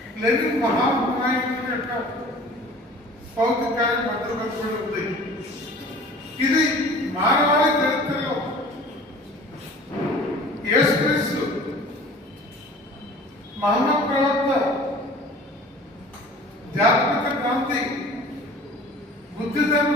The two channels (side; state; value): both; normal; correlation 0.45